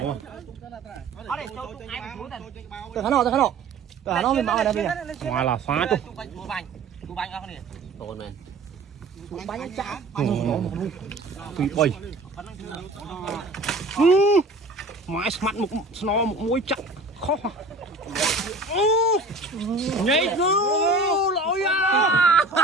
Từ nó mình bảo là bây giờ. Ngoài là phát thôi. Tồn này. Bánh chả. Tùy bay. Mãi mặt một sno một mũi chặt khó. Nhảy cứ lỗi à.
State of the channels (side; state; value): left; quieter; 3.1 dB